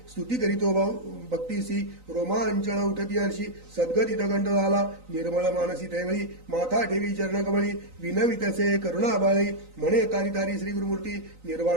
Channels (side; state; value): left; late; 3.9 ms